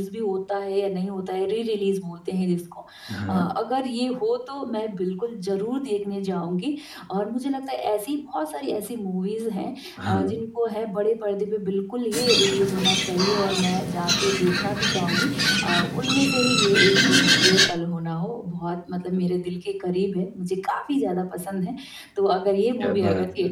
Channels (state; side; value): identical; both; correlation 1.00